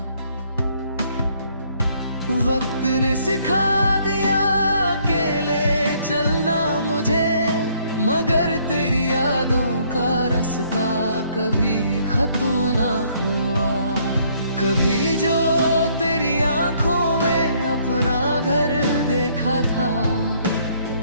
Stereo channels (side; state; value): both; inverted; correlation -0.65